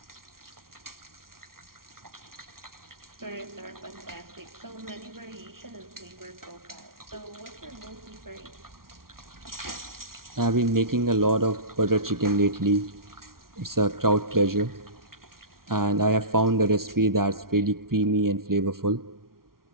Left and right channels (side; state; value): left; late; 0.93 ms